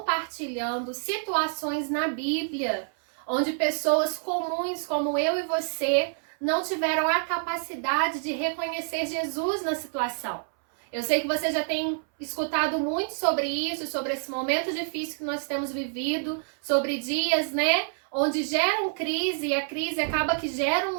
situações na Bíblia, onde pessoas comuns como eu e você não tiveram a capacidade de reconhecer Jesus na situação. Eu sei que você já tem escutado muito sobre isso, sobre esse momento difícil que nós temos vivido, sobre dias, né, onde geram crise e a crise acaba que gera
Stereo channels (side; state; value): left; silent; 60 dB below the other